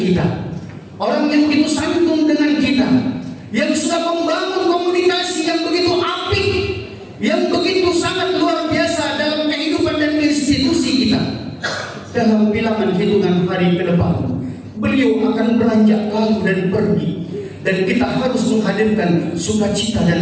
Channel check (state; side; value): identical; both; correlation 1.00